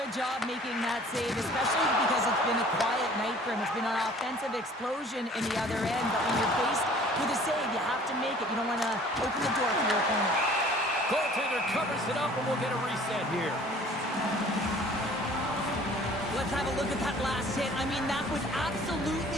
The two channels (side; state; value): both; normal; correlation 0.51